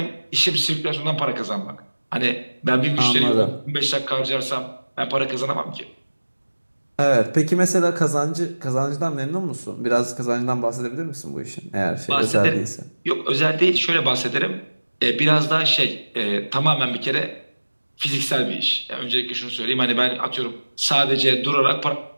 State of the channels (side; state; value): both; inverted; correlation -1.00